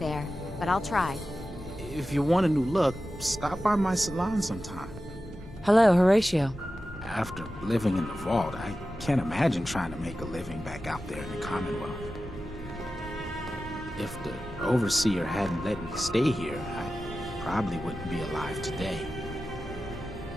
but I'll try. If you want a new look, stop by my salon sometime. Hello, Horatio. After living in the vault, I can't imagine trying to make a living back out there in the Commonwealth. If the Overseer hadn't let me stay here, I probably wouldn't be alive today.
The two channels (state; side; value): normal; both; correlation 0.93